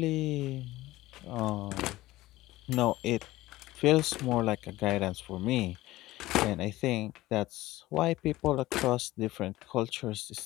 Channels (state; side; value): quieter; right; 17.4 dB